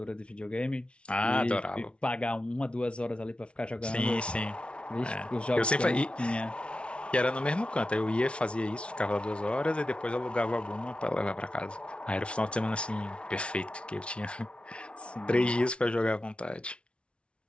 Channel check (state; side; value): late; right; 0.059 ms